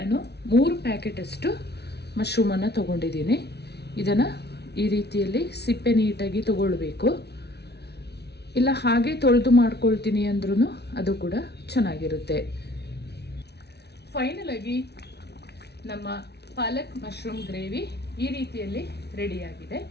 3 ಪ್ಯಾಕೆಟಷ್ಟು ಮಶ್ರೂಮನ್ನು ತೊಗೊಂಡಿದ್ದೀನಿ. ಇದನ್ನು ಈ ರೀತಿಯಲ್ಲಿ ಸಿಪ್ಪೆ ನೀಟಾಗಿ ತಗೊಳ್ಬೇಕು. ಇಲ್ಲ ಹಾಗೆ ತೊಳೆದು ಮಾಡ್ಕೊಳ್ತೀನಿ ಅಂದ್ರೂ ಅದು ಕೂಡ ಚೆನ್ನಾಗಿರುತ್ತೆ. ಫೈನಲ್ ಆಗಿ ನಮ್ಮ ಪಾಲಕ್ ಮಶ್ರೂಮ್ ಗ್ರೇವಿ ಈ ರೀತಿಯಲ್ಲಿ ರೆಡಿಯಾಗಿದೆ.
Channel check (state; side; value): late; right; 0.49 ms